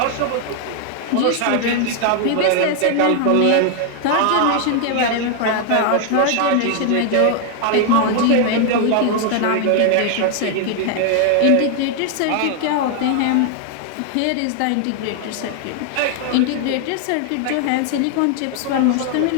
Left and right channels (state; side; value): different; both; correlation 0.00